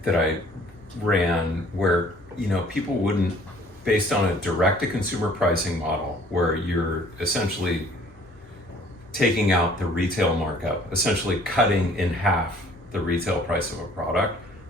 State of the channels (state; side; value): normal; both; correlation 0.55